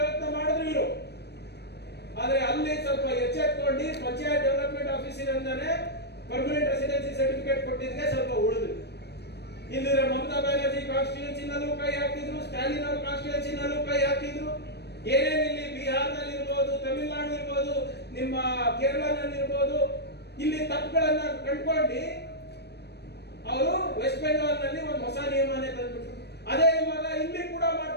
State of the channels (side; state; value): right; late; 0.48 ms